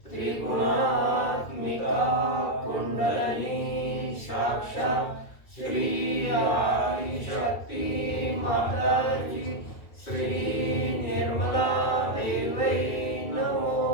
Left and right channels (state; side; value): late; right; 2.3 ms